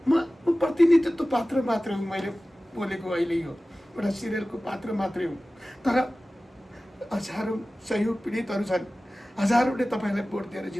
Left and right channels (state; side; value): normal; both; correlation 0.97